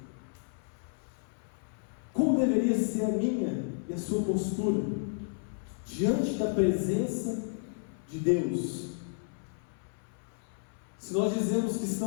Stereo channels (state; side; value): silent; right; 56 dB below the other